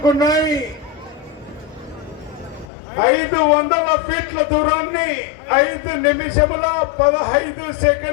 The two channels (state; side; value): drops out; right; at 2.7 s